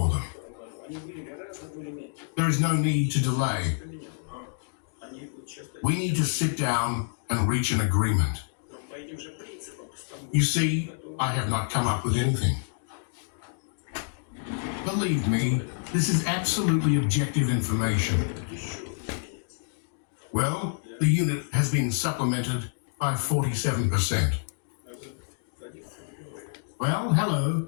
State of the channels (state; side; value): silent; right; digital silence